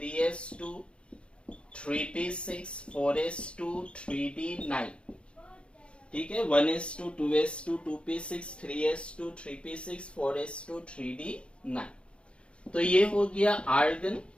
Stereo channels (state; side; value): late; right; 0.058 ms